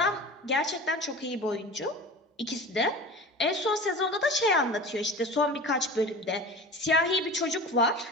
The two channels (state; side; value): normal; both; correlation 0.36